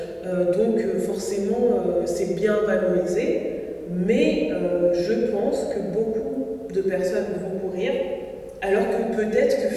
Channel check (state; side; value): identical; both; correlation 1.00